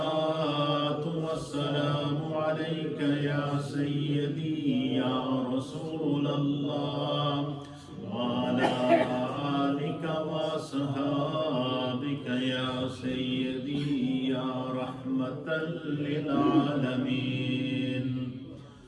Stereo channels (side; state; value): both; identical; correlation 1.00